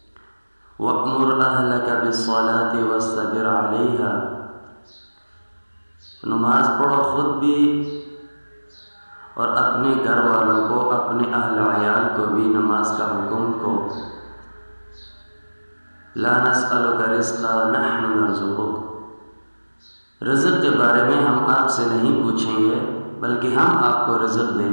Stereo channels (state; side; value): inverted; both; correlation -1.00